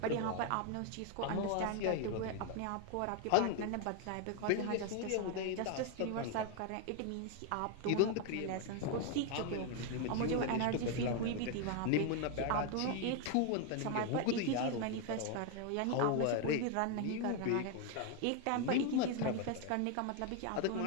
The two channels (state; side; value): different; both; correlation 0.01